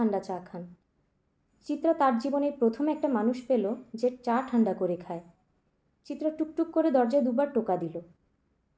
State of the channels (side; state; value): both; identical; correlation 1.00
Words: চা খান। চিত্রা তার জীবনে প্রথম একটা মানুষ পেল যে চা ঠান্ডা করে খায়। চিত্রা টুকটুক করে দরজায় 2বার টোকা দিল।